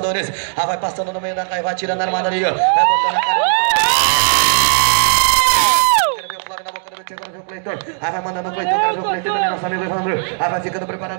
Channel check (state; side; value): silent; left; digital silence